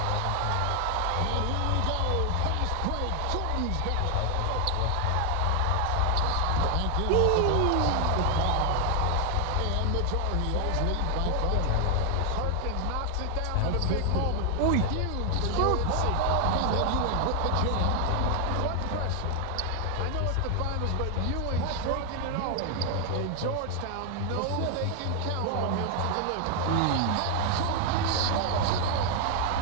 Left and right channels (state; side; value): different; both; correlation 0.00